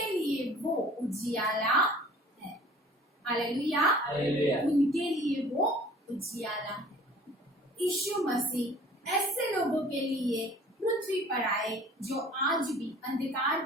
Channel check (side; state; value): both; normal; correlation 0.49